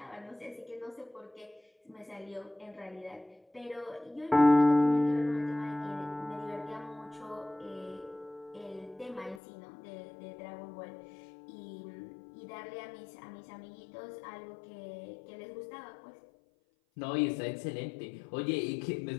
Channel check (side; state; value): right; drops out; at 9.4 s